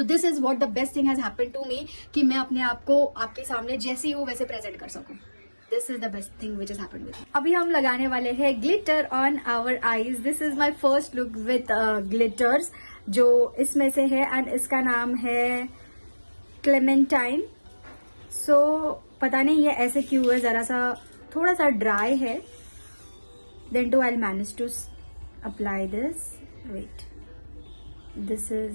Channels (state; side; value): inverted; both; correlation -1.00